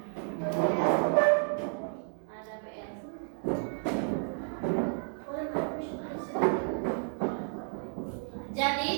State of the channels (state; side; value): silent; left; 57 dB below the other